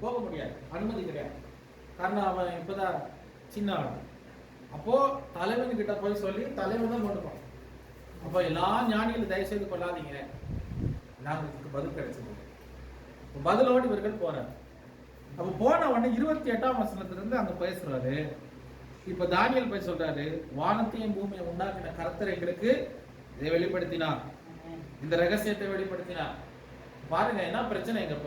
போக முடியாது, அனுமதி கிடையாது. காரணம் அவன் இப்பதான் சின்ன ஆள். அப்போ தலைவன் கிட்ட போய் சொல்லி தலைவன் தான் கொண்டு போவான். அப்போ எல்லா ஞானிகளும் தயவு செய்து கொள்ளாதீங்க, நாங்களுக்கு பதில் கிடைச்சது. பதிலோடு இவர்கள் போறாரு. அப்ப போன உடனே 28ஆம் வசனத்துல இருந்து அங்க பேசுறாரு. இப்ப தானியேல் போய் சொல்றாரு, வானத்தையும் பூமியை உண்டாக்கின கர்த்தர் எங்களுக்கு இதை வெளிப்படுத்தினார், இந்த ரகசியத்தை வெளிப்படுத்தினார். பாருங்க என்ன பிரச்சனைங்க.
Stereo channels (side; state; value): both; identical; correlation 1.00